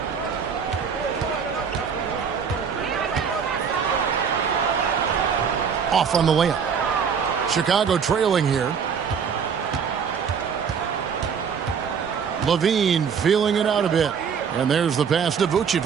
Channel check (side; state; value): left; quieter; 6.7 dB